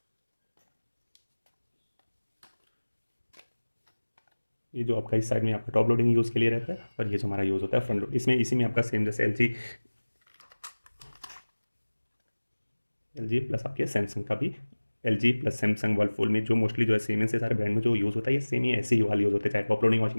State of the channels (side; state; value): both; inverted; correlation -1.00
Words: ये जो आपका इस साइड में आपका टॉप लोडिंग यूज़ के लिए रहता है और ये जो हमारा यूज़ होता है फ्रंट लोड, इसमें इसी में आपका सेम जैसे एल जी प्लस आपके सैमसंग का भी LG प्लस सैमसंग वर्लपूल में जो मोस्टली जो है सीमेंस से सारे ब्रांड में जो यूज़ होता है ये सेम ही ऐसे ही वाला यूज़ होता है, चाहे टॉप लोडिंग